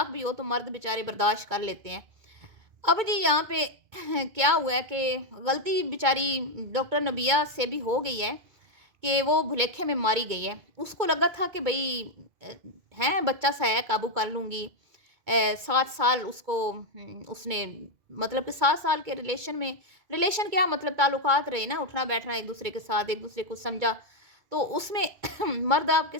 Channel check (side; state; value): left; late; 2.2 ms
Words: भी हो, तो मर्द बेचारे बर्दाश्त कर लेते हैं। अब जी यहाँ पे क्या हुआ है कि गलती बेचारी डॉक्टर नबिया से भी हो गई है कि वो भुलेखे में मारी गई है। उसको लगा था कि भई है बच्चा सा है, काबू कर लूँगी। 7 साल उसको उसने मतलब कि 7 साल के रिलेशन क्या मतलब ताल्लुकात रहे ना, उठना-बैठना एक-दूसरे के साथ, एक-दूसरे को समझा। तो उसमें मर्द आपके